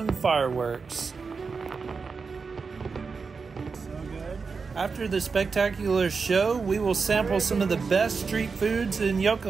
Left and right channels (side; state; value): left; quieter; 5.0 dB